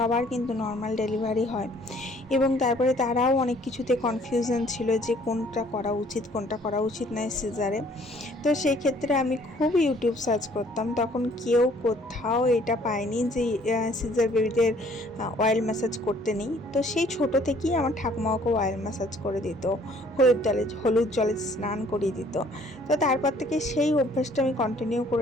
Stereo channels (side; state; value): both; normal; correlation 0.59